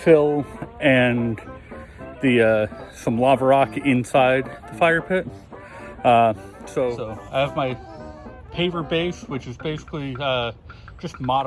and the some lava rock inside the fire pit. So I have my paver base, which is basically just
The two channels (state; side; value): identical; both; correlation 1.00